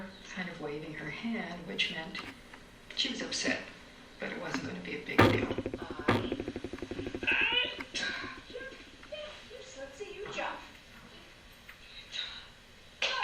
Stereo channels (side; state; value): both; identical; correlation 1.00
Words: kind of waving her hand, which meant she was upset, but it wasn't going to be a big deal. Let's see you jump.